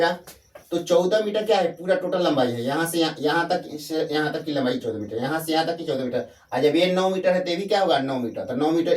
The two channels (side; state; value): both; identical; correlation 1.00